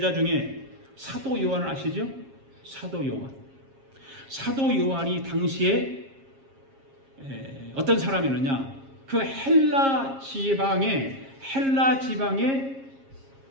중에 사도 요한을 아시죠? 사도 요한. 사도 요한이 당시에 어떤 사람이었느냐? 그 헬라 지방의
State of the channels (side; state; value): left; late; 7.4 ms